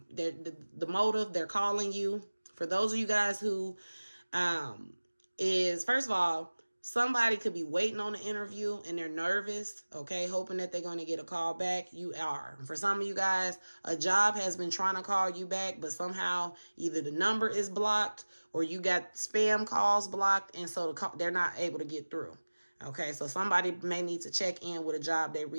motive, they're calling you. For those of you guys who is, first of all, somebody could be waiting on the interview and they're nervous, okay, hoping that they're going to get a call back. You are. For some of you guys, a job has been trying to call you back, but somehow either the number is blocked or you got spam calls blocked, and so they're not able to get through. Okay, so somebody may need to check in with a job they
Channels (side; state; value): both; inverted; correlation -1.00